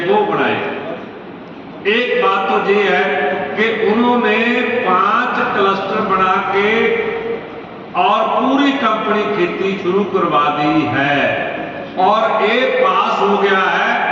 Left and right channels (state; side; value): identical; both; correlation 1.00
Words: वो बनाएगी। एक बात तो ये है कि उन्होंने 5 क्लस्टर बना के और पूरी कंपनी खेती शुरू करवा दी है और एक पास हो गया है